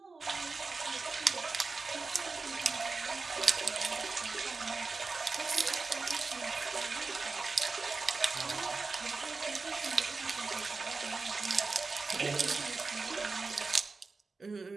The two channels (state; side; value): quieter; left; 4.1 dB